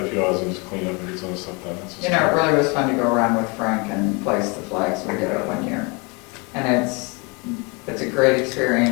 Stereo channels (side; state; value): right; quieter; 30.0 dB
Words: few hours and just clean up and get some of the stuff done. That's just- You know, it really was fun to go around with Frank and place the flags. We did it one year. And it's a great